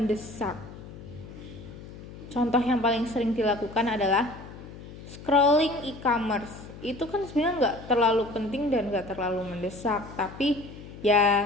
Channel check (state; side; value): noise; left; hum, 15 dB below the sound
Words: Contoh yang paling sering dilakukan adalah scrolling e-commerce. Itu kan sebenarnya nggak terlalu penting dan nggak terlalu mendesak, tapi